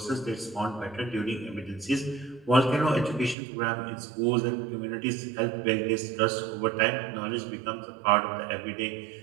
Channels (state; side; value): drops out; left; at 3.4 s